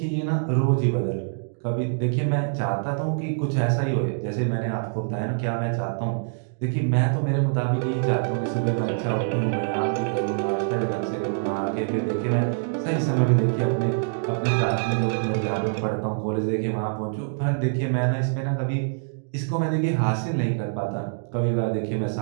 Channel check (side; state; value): left; silent; digital silence